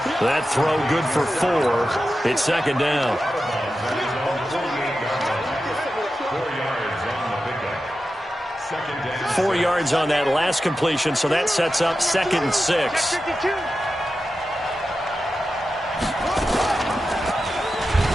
That throw good for 4. It's second down. 4 yards on that last completion, so that sets up 2nd and 6.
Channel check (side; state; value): both; normal; correlation 0.91